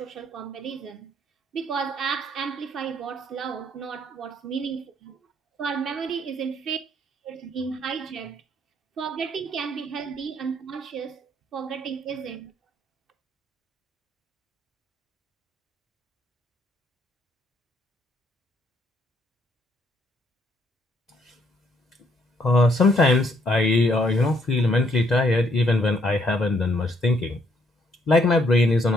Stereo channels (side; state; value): both; normal; correlation 0.69